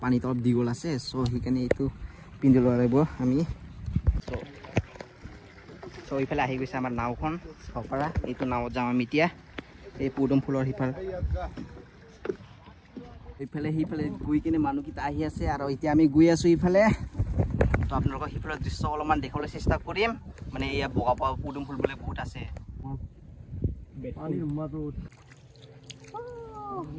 পানীটো অলপ দীঘল আছে সো সেইকাৰণে এইটো পিন্ধি ল'ব লাগিব আমি সো ইফালে আহি গৈছে আমাৰ নাওখন চাব পাৰা এইটো নাৱত যাম আমি এতিয়া এই পুডুম ফুলৰ সিফালে গৈ কিনে মানুহকেইটা আহি আছে আৰু এতিয়া আমি গৈ আছো ইফালে তো আপোনালোকক সিফালৰ দৃশ্য অলপমান দেখাবলৈ চেষ্টা কৰিম মানে এয়া বগা বগা পুডুম ফুল বোলে বহুত আছে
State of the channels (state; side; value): identical; both; correlation 1.00